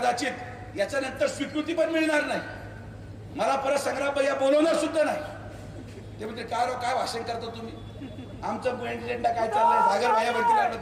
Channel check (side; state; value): both; identical; correlation 1.00